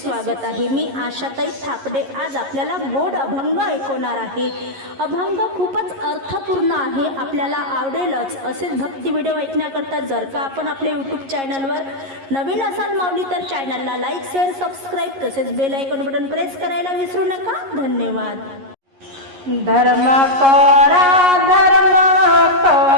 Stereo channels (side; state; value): left; late; 11 ms